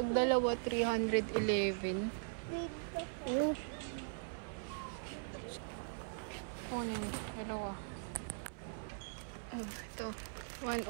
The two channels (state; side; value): silent; left; 51 dB below the other